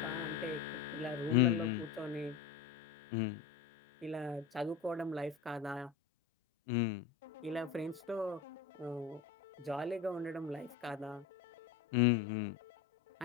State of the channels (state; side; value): quieter; right; 6.5 dB